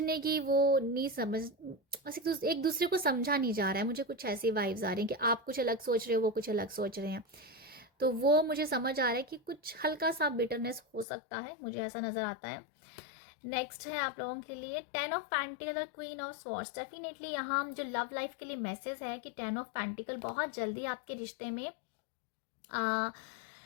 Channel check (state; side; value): drops out; right; at 11.1 s